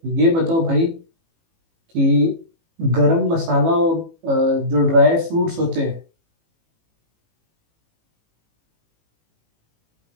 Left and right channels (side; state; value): left; late; 18 ms